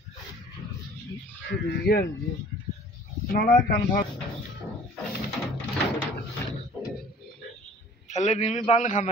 थले नीवी बंद खा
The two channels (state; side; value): normal; both; correlation 0.49